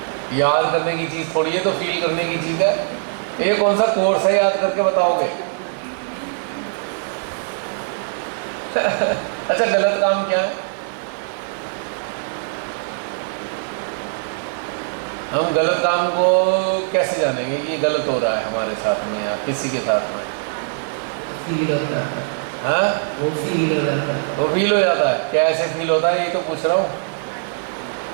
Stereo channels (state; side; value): silent; left; digital silence